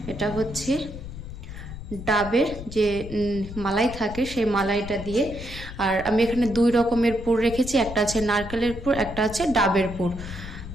এটা হচ্ছে ডাবের যে মালাই থাকে সেই মালাইটা দিয়ে। আর আমি এখানে 2 রকমের পুর রেখেছি, একটা আছে নারকেলের পুর, একটা আছে ডাবের পুর।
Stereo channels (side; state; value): left; noise; rumble, 11 dB below the sound